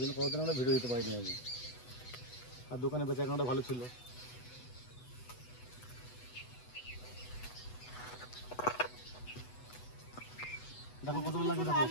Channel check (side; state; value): right; late; 8.1 ms